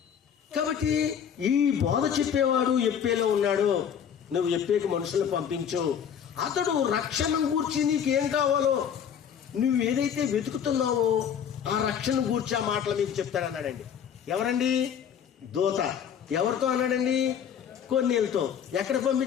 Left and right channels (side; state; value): right; quieter; 8.3 dB